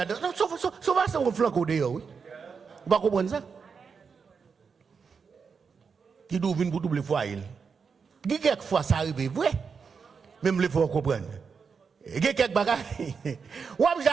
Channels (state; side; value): quieter; left; 5.7 dB